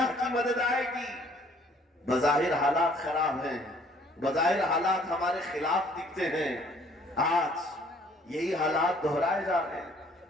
کی مدد آئے گی۔ بظاہر حالات خراب ہیں، بظاہر حالات ہمارے خلاف دکھتے ہیں، آج یہی حالات دہرائے جا رہے ہیں۔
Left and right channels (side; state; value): both; normal; correlation 0.59